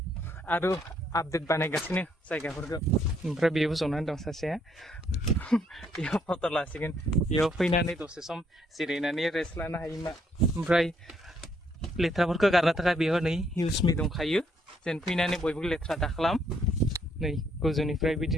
आरो आपडेट बानायगासिनो जायगाफोरखौ ओमफ्राय बेयाव जनानै दं सासेया बेयाव फट' लासिगोन बेयाव फैनानै दसे सम जिरायनानै रेस्ट लानो हायो मा ओमफ्राय लेथ्राफोरखौ गारनो थाखाय बेयाव नै हिउसमि दंखायो जेन फैनानै बयबो लेथ्रा दाखालाम नै गोजौनिफ्राय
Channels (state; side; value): normal; both; correlation 0.70